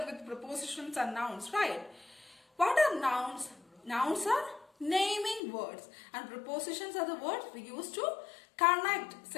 with prepositions and nouns, right? What are nouns? Nouns are naming words, and prepositions are the words we use to connect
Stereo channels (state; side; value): drops out; right; at 5.4 s